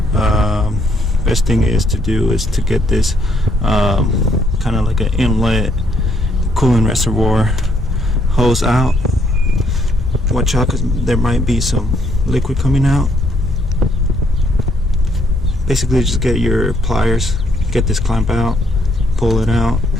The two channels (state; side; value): normal; both; correlation 0.70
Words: best thing is to get this kind of like an inlet coolant reservoir hose out. Watch out, because there might be some liquid coming out. Basically just get your pliers, get this clamp out, pull it out.